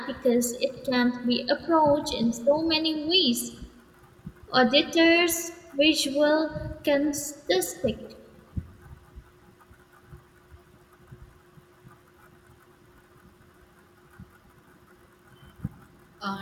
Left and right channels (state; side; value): identical; both; correlation 1.00